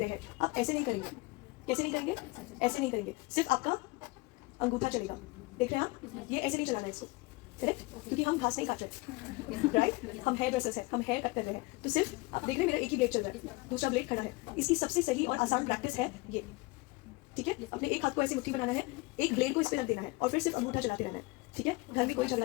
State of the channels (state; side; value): quieter; right; 23.9 dB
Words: हैं, आप ऐसे नहीं करेंगे। कैसे नहीं करेंगे? ऐसे नहीं करेंगे, सिर्फ आपका अंगूठा चलेगा। देख रहे हैं आप? ये ऐसे नहीं चलाना है इसको, करेक्ट? क्योंकि हम घास नहीं काट रहे, राइट? हम हेयर ड्रेसर्स हैं, हम हेयर कट कर रहे हैं। तो सिर्फ आप देख रहे हैं मेरा एक ही ब्लेड चल रहा है, दूसरा ब्लेड खड़ा है। इसकी सबसे सही और आसान प्रैक्टिस है ये, ठीक है? अपने एक हाथ को ऐसे मुट्ठी बनाना है, एक ब्लेड को इस पे रख देना है और फिर सिर्फ अंगूठा चलाते रहना है, ठीक है? घर में कोई झगड़ा